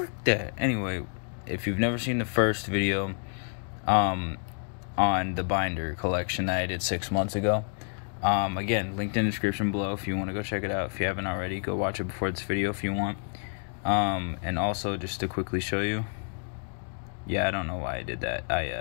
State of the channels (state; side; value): silent; right; 59 dB below the other